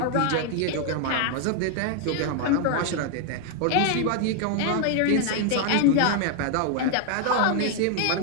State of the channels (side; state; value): both; different; correlation 0.00